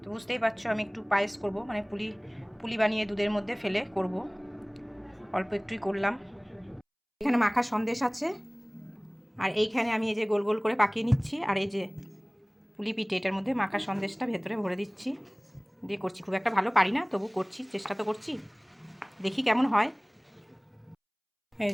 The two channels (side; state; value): both; identical; correlation 1.00